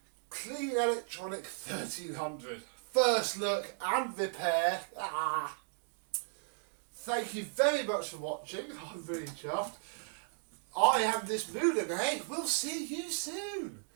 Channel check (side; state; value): left; silent; digital silence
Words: Clean Electronic 1300. First look and repair. Thank you very much for watching. I'm really chuffed. I am this Moulinex. We'll see you soon.